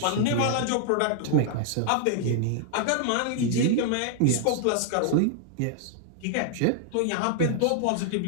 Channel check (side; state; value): both; different; correlation 0.00